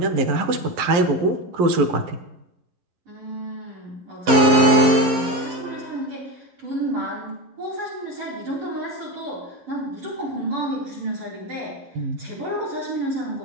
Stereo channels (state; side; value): late; left; 11 ms